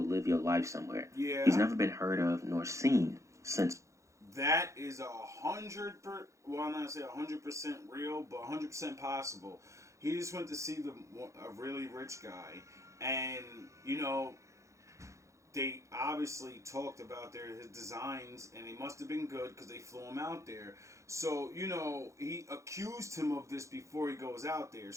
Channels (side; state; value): left; late; 0.15 ms